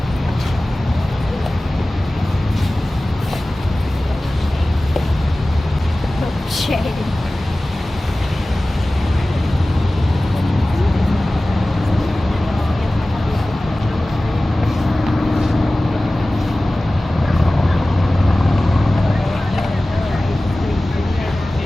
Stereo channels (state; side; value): normal; both; correlation 0.97